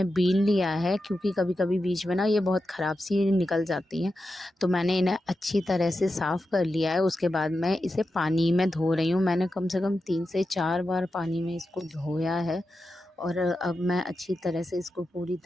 बीन लिया है, क्योंकि कभी-कभी बीच में ना ये बहुत ख़राब सी निकल जाती हैं। तो मैंने इन्हें अच्छी तरह से साफ़ कर लिया है। उसके बाद मैं इसे पानी में धो रही हूँ। मैंने कम से कम 3 से 4 बार पानी में इसको धोया है और अब मैं अच्छी तरह से इसको पूरी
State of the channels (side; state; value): both; normal; correlation 0.90